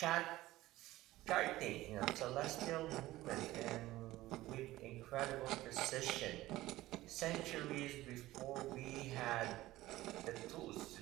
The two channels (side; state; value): left; quieter; 16.8 dB